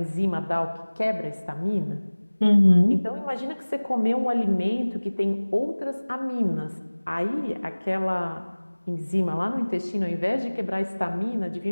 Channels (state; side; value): inverted; both; correlation -1.00